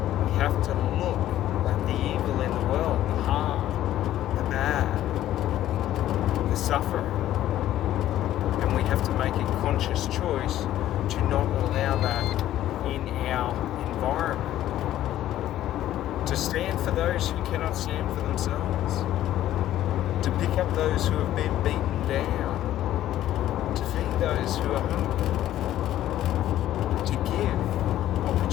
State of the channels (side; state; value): right; quieter; 13.0 dB